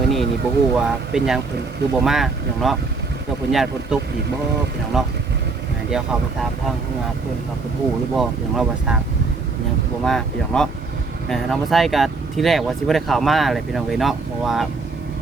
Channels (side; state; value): left; quieter; 4.1 dB